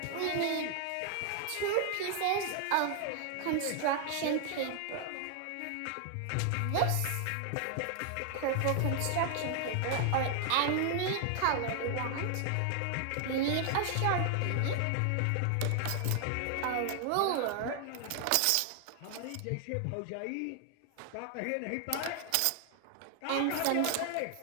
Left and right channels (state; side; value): different; both; correlation 0.00